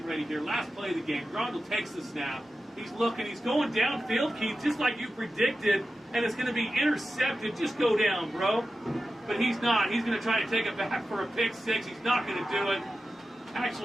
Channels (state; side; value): normal; both; correlation 0.93